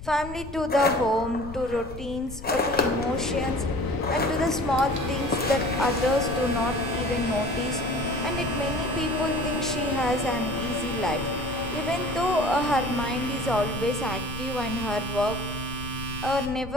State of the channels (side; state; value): left; noise; rumble, 12 dB below the sound